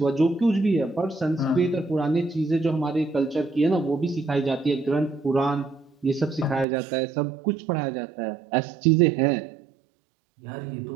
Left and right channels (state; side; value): drops out; left; at 6.7 s